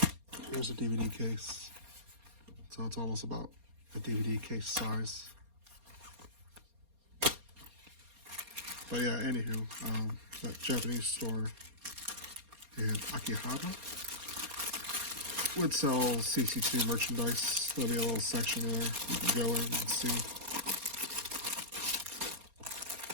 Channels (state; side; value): late; left; 4.3 ms